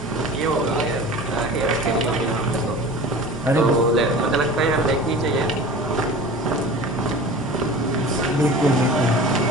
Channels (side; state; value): both; normal; correlation 0.38